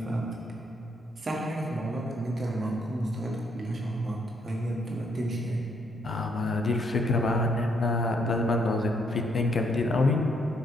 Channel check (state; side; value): normal; both; correlation 0.72